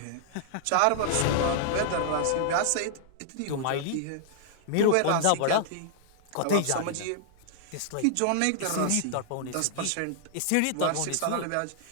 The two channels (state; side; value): different; both; correlation -0.01